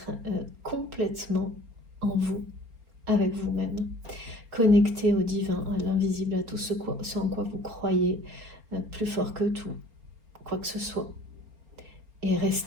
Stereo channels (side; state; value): left; late; 4.3 ms